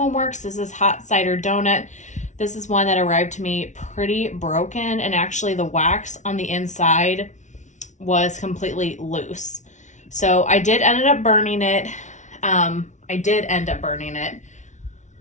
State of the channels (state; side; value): late; right; 0.35 ms